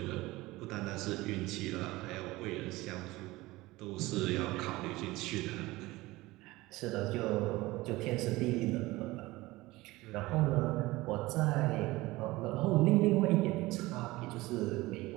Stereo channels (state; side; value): quieter; left; 19.8 dB